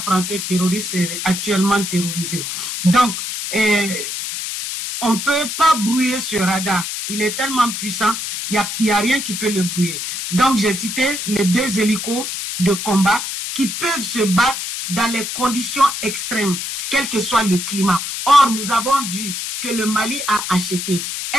français terroriste est actuellement terrorisé. Donc, on ne peut pas brouiller ce radar. Il est tellement puissant, il n'y a rien qui peut le brouiller. Donc, j'ai cité les deux hélicos de combat qui peuvent se battre dans les conditions extrêmes, quel que soit le climat. Or, nous avons vu que le Mali a acheté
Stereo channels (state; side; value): noise; left; hiss, 5 dB below the sound